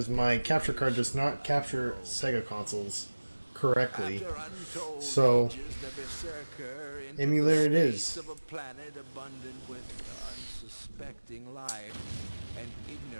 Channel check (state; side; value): inverted; both; correlation -1.00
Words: my capture card does not capture Sega consoles correctly. So emulator it is. Of a planet abundant with unsuspecting life and